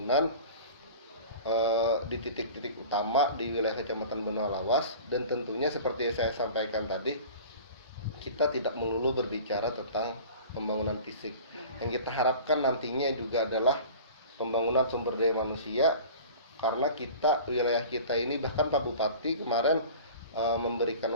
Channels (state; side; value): inverted; both; correlation -0.40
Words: di titik-titik utama di wilayah Kecamatan Benua Lawas, dan tentunya seperti saya sampaikan tadi, kita tidak melulu berbicara tentang pembangunan fisik. Yang kita harapkan nantinya juga adalah pembangunan sumber daya manusia, karena wilayah kita ini, bahkan Pak Bupati kemarin memberikan